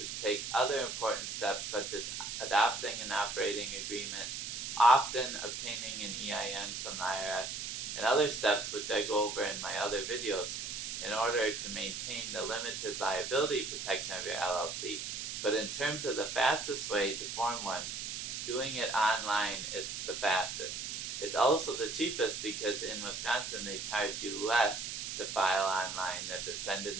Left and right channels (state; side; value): noise; right; hiss, 5 dB below the sound